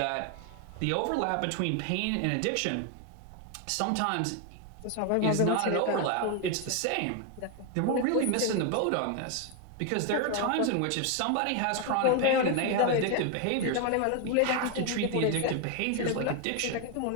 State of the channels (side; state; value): both; different; correlation 0.01